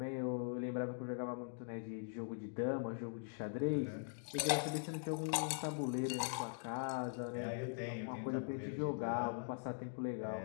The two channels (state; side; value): silent; right; digital silence